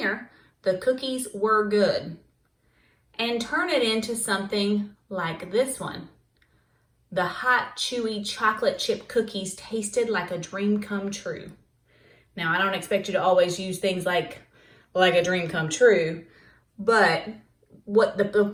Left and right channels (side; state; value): both; identical; correlation 1.00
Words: the cookies were good, and turn it into something like this one. The hot, chewy chocolate chip cookies tasted like a dream come true. Now, I don't expect you to always use things like a dream come true, but what the